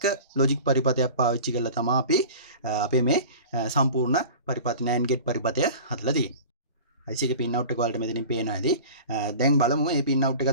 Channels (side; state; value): both; inverted; correlation -0.38